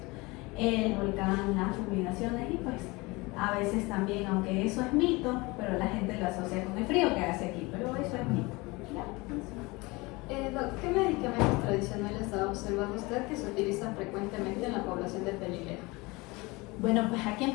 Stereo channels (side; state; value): right; quieter; 24.0 dB